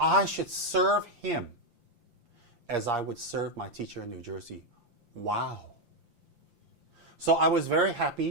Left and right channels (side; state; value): left; late; 5.8 ms